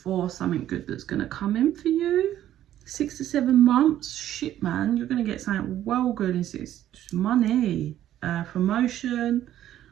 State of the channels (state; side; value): quieter; left; 12.1 dB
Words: something good that's going to come in for you. 6 to 7 months. Shit, man. You're going to get something well good in 6. Money, promotion,